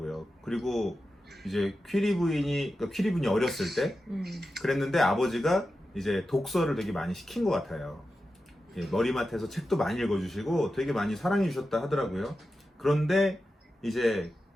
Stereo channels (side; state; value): both; normal; correlation 0.91